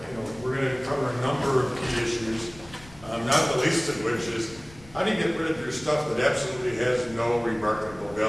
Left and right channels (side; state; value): left; noise; rumble, 21 dB below the sound